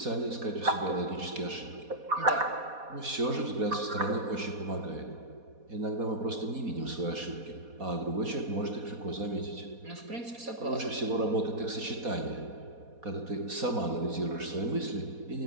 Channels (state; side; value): late; left; 4.2 ms